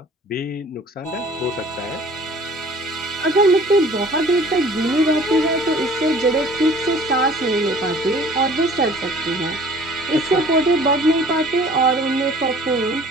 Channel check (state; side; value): normal; both; correlation 0.51